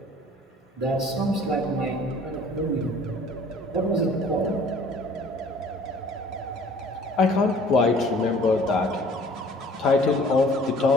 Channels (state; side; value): normal; both; correlation 0.52